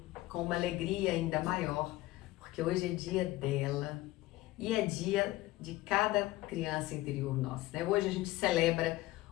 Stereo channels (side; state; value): right; quieter; 17.8 dB